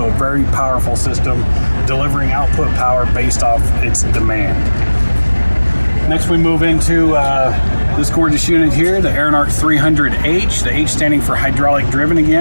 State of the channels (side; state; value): both; inverted; correlation -1.00